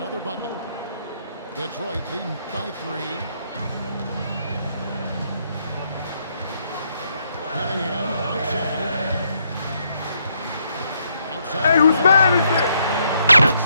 bucket. Detroit leading by 3. Cunningham outside. Hey, whose man is it? That's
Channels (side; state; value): both; inverted; correlation -0.74